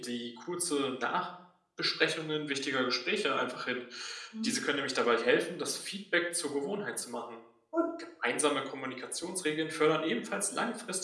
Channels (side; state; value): both; identical; correlation 1.00